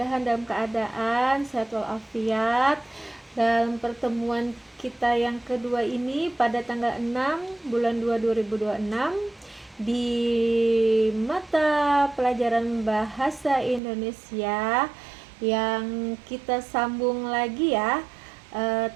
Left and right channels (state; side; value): drops out; left; at 13.8 s